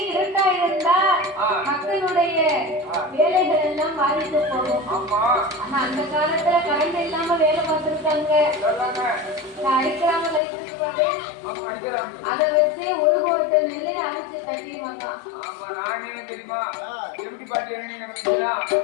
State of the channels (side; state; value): right; drops out; at 10.4 s